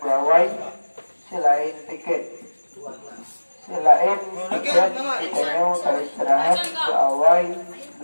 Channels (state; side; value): inverted; both; correlation -1.00